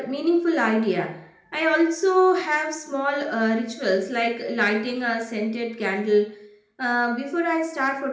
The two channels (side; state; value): both; identical; correlation 1.00